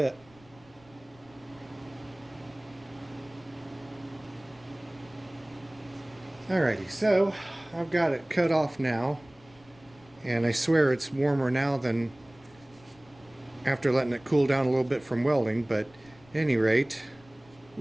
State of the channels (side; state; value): left; noise; rumble, 27 dB below the sound